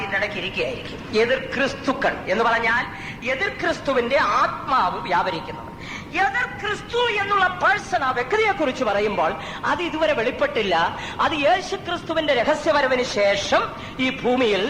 ഇതിന്റെ ഇടയ്ക്ക് ഇരിക്കുകയായിരിക്കും. എതിർ ക്രിസ്തുക്കൾ എന്ന് പറഞ്ഞാൽ എതിർ ക്രിസ്തുവിന്റെ ആത്മാവ് വ്യാപരിക്കുന്നവർ. എതിർ ക്രിസ്തു എന്നുള്ള പേഴ്സൺ, ആ വ്യക്തിയെ കുറിച്ച് പറയുമ്പോൾ അത് ഇതുവരെ വെളിപ്പെട്ടില്ല. അത് യേശു ക്രിസ്തുവിന്റെ രഹസ്യവരവിന് ശേഷം ഈ ഭൂമിയിൽ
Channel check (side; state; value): both; identical; correlation 1.00